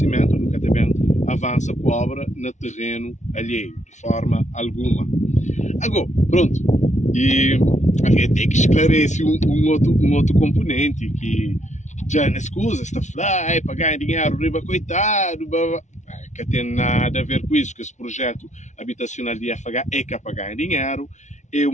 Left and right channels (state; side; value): late; right; 0.34 ms